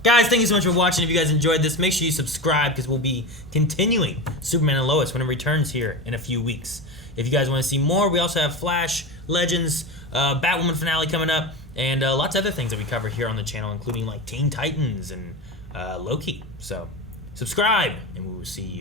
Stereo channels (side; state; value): both; normal; correlation 0.24